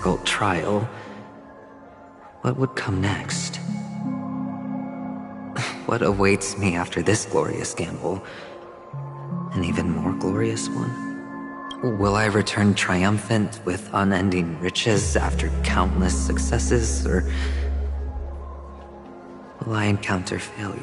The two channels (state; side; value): identical; both; correlation 1.00